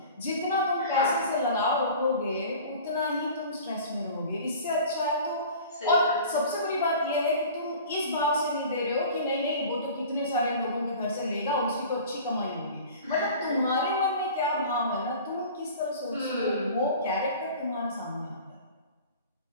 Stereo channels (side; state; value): both; inverted; correlation -0.41